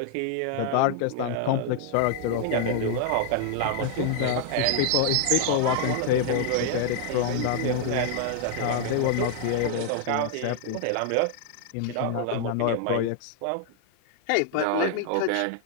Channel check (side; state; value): both; different; correlation 0.00